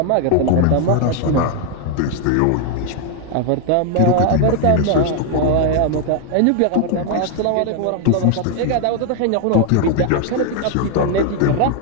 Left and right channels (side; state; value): both; different; correlation 0.00